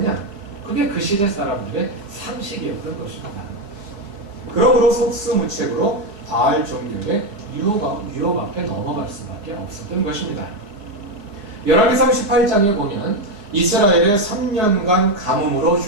그게 그 시대 사람들의 상식이었던 것입니다. 그러므로 속수무책으로 바알 종교의 유혹 앞에 넘어갈 수밖에 없었던 것입니다. 열왕기상 18장에 보면 이스라엘의 3년간 가뭄으로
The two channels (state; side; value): late; left; 4.6 ms